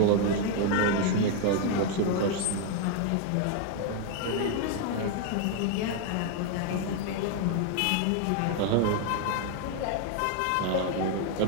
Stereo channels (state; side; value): different; both; correlation 0.01